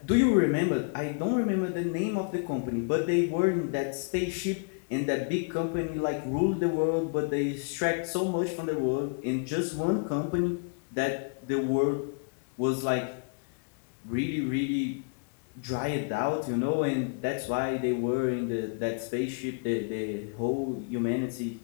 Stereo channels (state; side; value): quieter; right; 37.3 dB